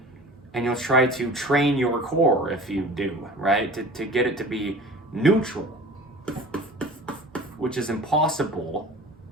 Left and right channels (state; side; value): normal; both; correlation 0.41